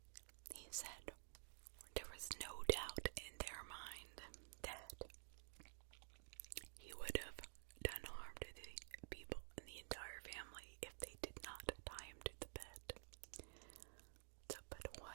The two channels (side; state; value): left; silent; digital silence